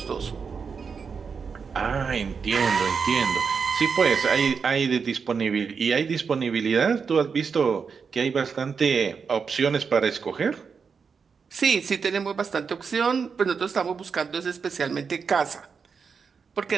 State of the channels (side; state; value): left; quieter; 5.8 dB